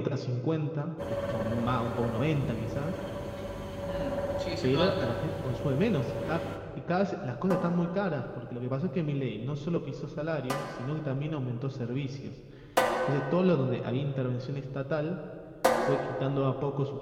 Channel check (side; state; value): both; identical; correlation 1.00